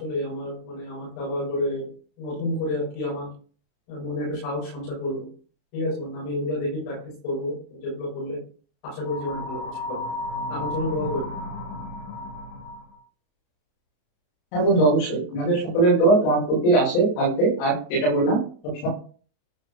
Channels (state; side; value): late; right; 34 ms